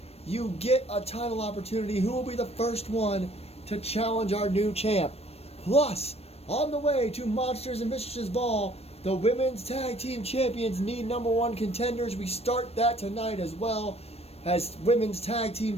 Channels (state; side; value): late; right; 0.29 ms